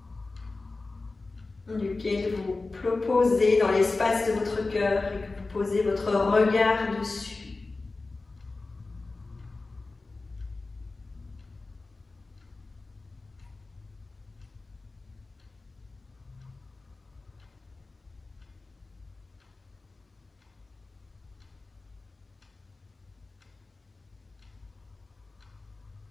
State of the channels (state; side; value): quieter; right; 3.5 dB